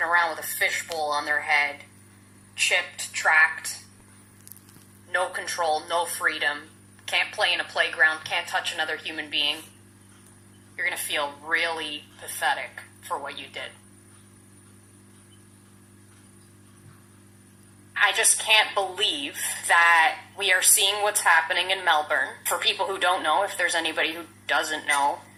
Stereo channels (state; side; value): identical; both; correlation 1.00